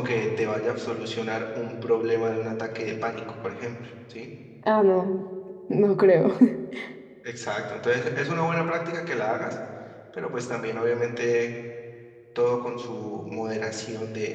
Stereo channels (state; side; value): identical; both; correlation 1.00